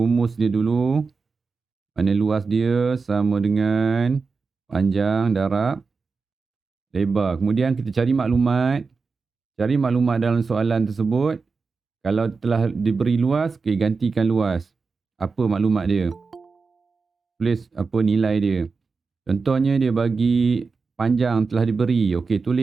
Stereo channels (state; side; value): quieter; left; 4.6 dB